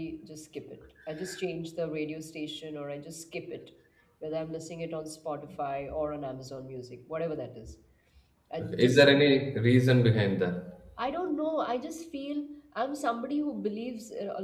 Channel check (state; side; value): identical; both; correlation 1.00